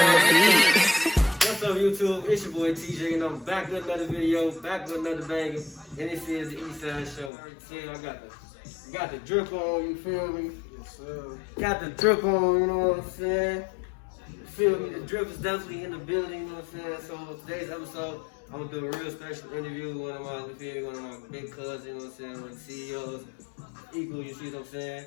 beat. What's up, YouTube? It's your boy TJ, and I'm back with another video, back with another banger. And this is the Eastside show. Yeah, I got the drip on, you feel me? Yes, sir. Got the drip on, you know what I'm saying? You feel me? The drip is definitely in the building, you know what I'm saying? So today's episode, I'm gonna do a real special interview with one of my big cousins, you know what I'm saying? One of the CEOs, Equal, you see what I'm saying?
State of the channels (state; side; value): drops out; right; at 7.3 s